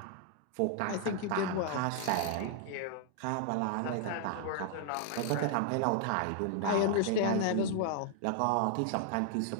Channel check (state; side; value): different; both; correlation 0.00